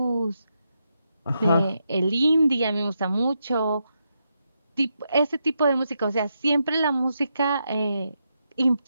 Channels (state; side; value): inverted; both; correlation -0.83